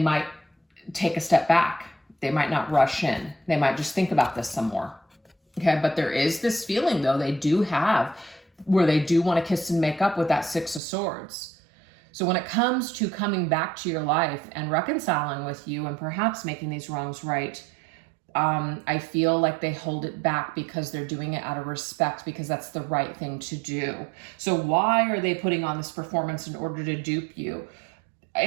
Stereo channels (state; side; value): drops out; left; at 10.8 s